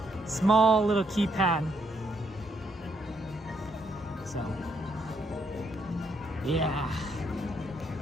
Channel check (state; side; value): normal; both; correlation 0.74